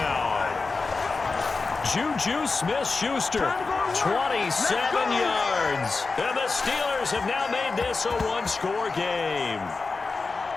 Juju Smith-Schuster, 27 yards. And the Steelers have now made this a 1-score game.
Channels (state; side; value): quieter; right; 4.1 dB